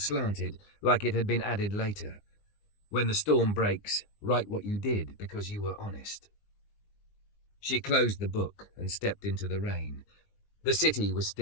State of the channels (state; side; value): late; right; 19 ms